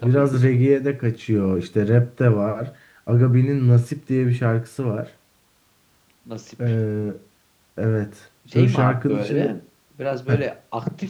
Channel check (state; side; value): identical; both; correlation 1.00